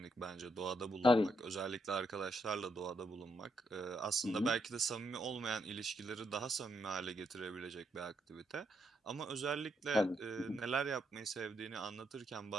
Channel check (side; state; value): both; normal; correlation 0.77